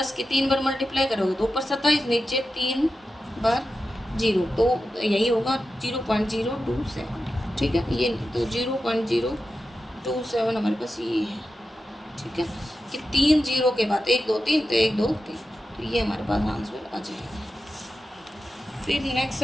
की 3 बार मल्टीप्लाई करोगे तो ऊपर 27, नीचे 3 बार 0, तो यही होगा 0.027, ठीक है, ये तो 0.027 हमारे पास ये है, ठीक है, कि 3 0 के बाद 1 2 3, तो 1 2 3, तो ये हमारे पास आंसर आ जाएगा। फिर नेक्स्ट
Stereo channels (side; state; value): both; normal; correlation 0.91